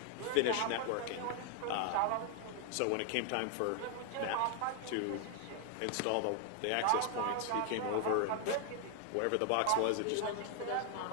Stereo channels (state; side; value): different; both; correlation 0.00